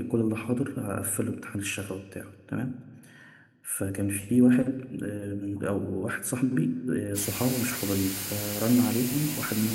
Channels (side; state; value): both; identical; correlation 1.00